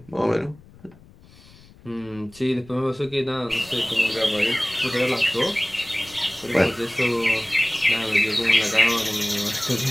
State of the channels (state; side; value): noise; left; rumble, 24 dB below the sound